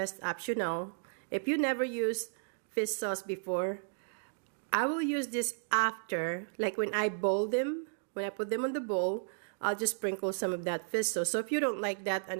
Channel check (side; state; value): left; silent; digital silence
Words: optional. If you never used fish sauce before, I will use this after, like when I boil them, when I put them on the bowl, I'll just sprinkle some of that fish sauce. So if you don't like that,